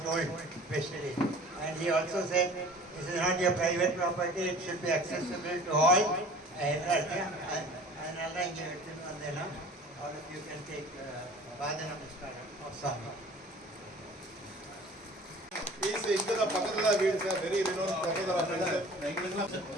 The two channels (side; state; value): both; normal; correlation 0.45